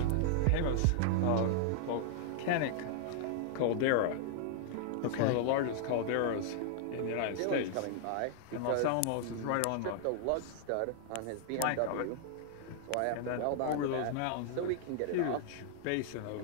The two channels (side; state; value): both; different; correlation -0.01